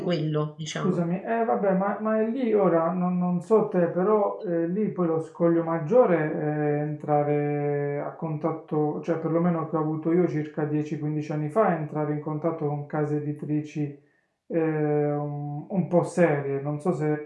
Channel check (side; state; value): both; identical; correlation 1.00